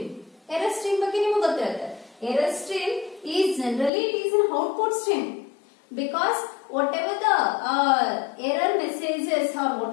Error stream ಬಗ್ಗೆ ನಿಮಗೆ ಗೊತ್ತಿರುತ್ತೆ. Error stream is generally it is an output stream because whatever the error messages or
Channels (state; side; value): drops out; right; at 3.9 s